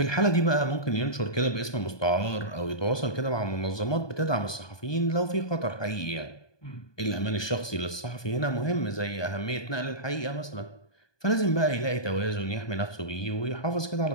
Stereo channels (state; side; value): late; right; 1.2 ms